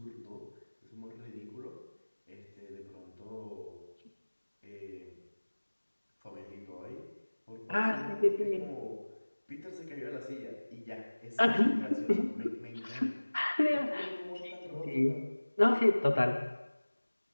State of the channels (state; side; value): inverted; both; correlation -1.00